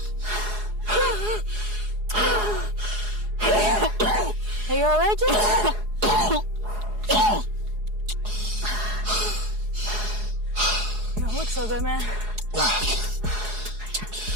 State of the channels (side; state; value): left; late; 4.8 ms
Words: Are you alright, Jake? You don't look so good, man.